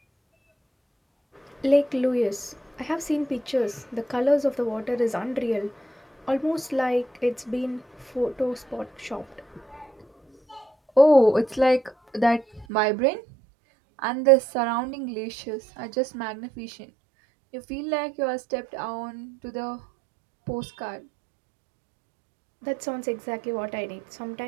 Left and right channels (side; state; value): left; drops out; at 12.7 s